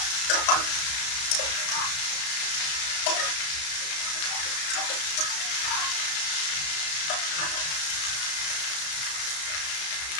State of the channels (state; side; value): late; right; 33 ms